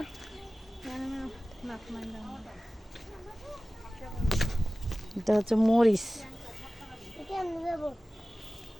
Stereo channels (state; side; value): normal; both; correlation 0.97